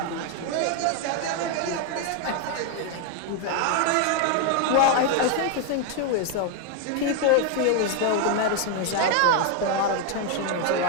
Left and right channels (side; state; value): both; different; correlation 0.01